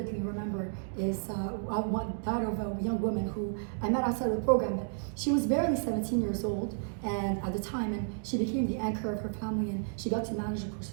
remember is that of a young woman who I met outside of the program. She was barely 17 years old and at the time, and she became the anchor of her family, and she got to manage,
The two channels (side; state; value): left; silent; digital silence